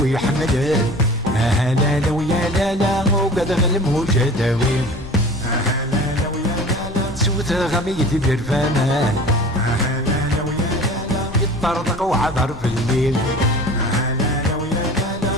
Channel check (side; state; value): left; noise; rumble, 17 dB below the sound